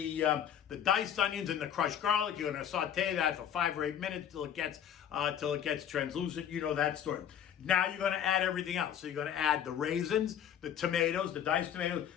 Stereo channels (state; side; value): quieter; right; 9.3 dB